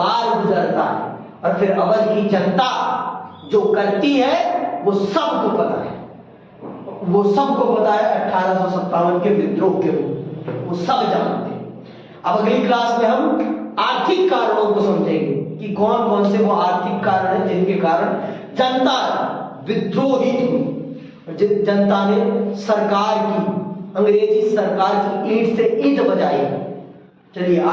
गुजरता है। और फिर अवध की जनता जो करती है वो सबको पता है, वो सबको पता है 1857 के विद्रोह के रूप, वो सब जानते हैं। अब अगली क्लास में हम आर्थिक कारणों को समझेंगे कि कौन कौन से वो आर्थिक कारण हैं जिनके कारण जनता विद्रोहित हुई, जनता ने सरकार की, अंग्रेजी सरकार की ईंट से ईंट बजाई। चलिए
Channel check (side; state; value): both; identical; correlation 1.00